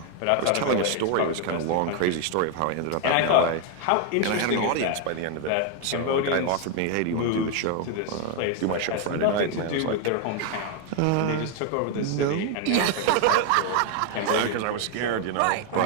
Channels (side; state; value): both; different; correlation 0.01